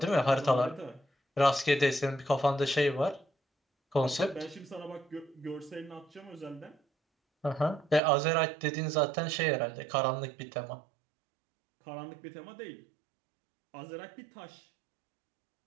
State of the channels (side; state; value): left; drops out; at 8.0 s